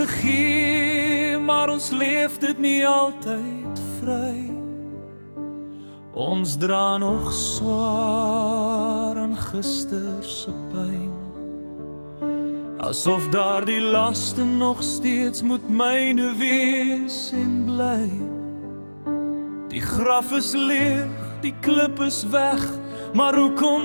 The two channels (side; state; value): both; inverted; correlation -1.00